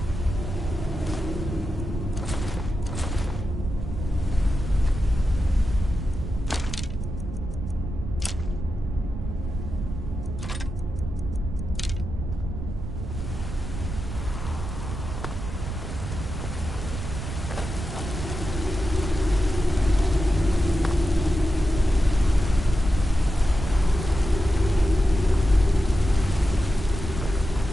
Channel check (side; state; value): right; noise; rumble, 6 dB below the sound